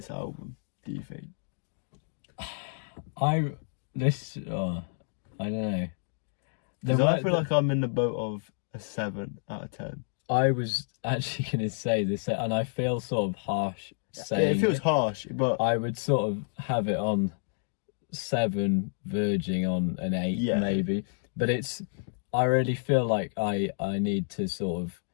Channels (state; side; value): silent; right; digital silence